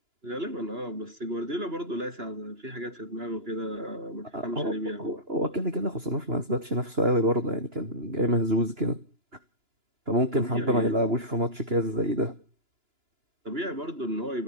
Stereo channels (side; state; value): left; late; 2.9 ms